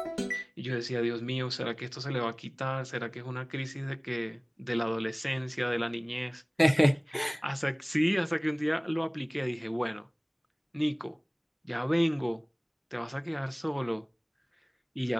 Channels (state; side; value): identical; both; correlation 1.00